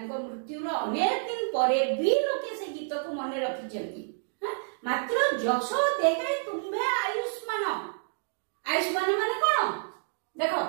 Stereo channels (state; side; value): silent; left; digital silence